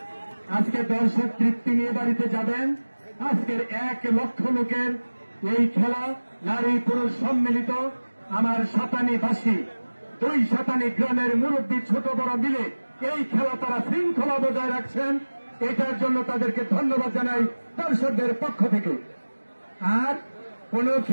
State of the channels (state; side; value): inverted; both; correlation -1.00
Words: আজকে দর্শক তৃপ্তি নিয়ে বাড়িতে যাবেন। আজকের 1 লক্ষ লোকের এই খেলা, নারী পুরুষ সম্মিলিত। আমার সাতানিবাসী 2 সাতানি গ্রামের মুরব্বী ছোট বড় মিলে এই খেলা তারা শৃঙ্খলা বজায় রাখছেন। এটার জন্য তাদেরকে ধন্যবাদ জানাই দর্শকদের পক্ষ থেকে। আর কোন